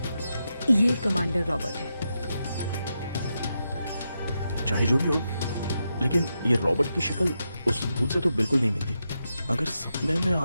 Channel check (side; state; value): both; inverted; correlation -0.86